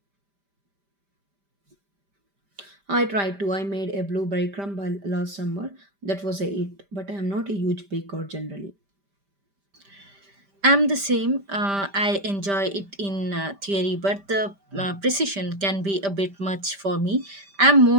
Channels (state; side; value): late; left; 5.1 ms